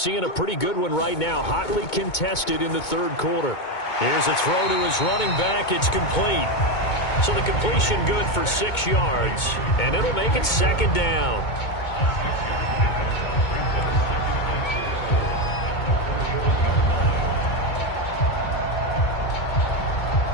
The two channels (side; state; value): right; late; 2.2 ms